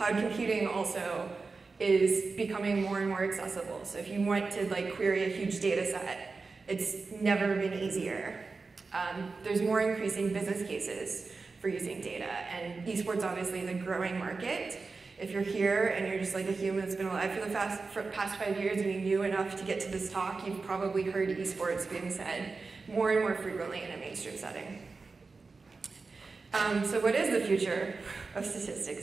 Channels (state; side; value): quieter; left; 4.2 dB